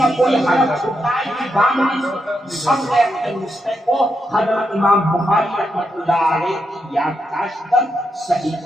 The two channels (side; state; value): both; normal; correlation 0.83